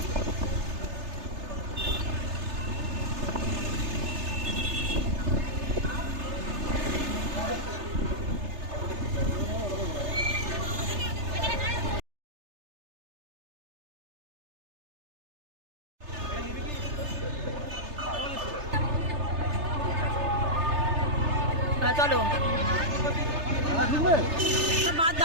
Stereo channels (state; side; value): late; left; 3.3 ms